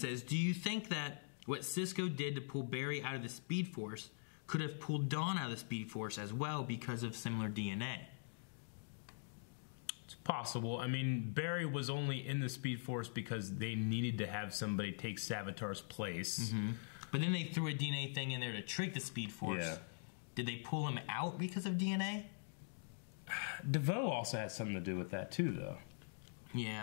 do you think that what Cisco did to pull Barry out of the Speed Force could have pulled Dawn out of the Speed Force as well because of similar DNA? It's possible. I mean, Barry was only in the Speed Force because they needed to have somebody take Savitar's place. Mm-hmm. But then they threw a DNA thing in there to trick the Speed Force. Yeah. Did they pull him out because of DNA? DeVoe also had something to do with that too, though.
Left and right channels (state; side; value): silent; right; digital silence